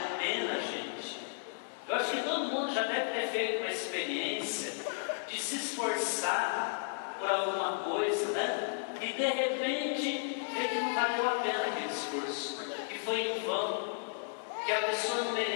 pena, gente. Eu acho que todo mundo já deve ter feito uma experiência de se esforçar por alguma coisa, né? E de repente ver que não valeu a pena aquele esforço, que foi em vão, que a pessoa não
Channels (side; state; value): right; silent; 55 dB below the other